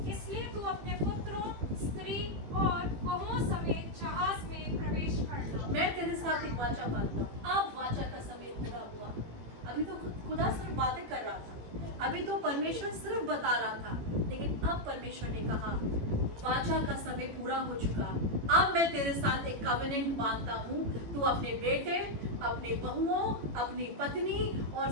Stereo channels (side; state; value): left; late; 18 ms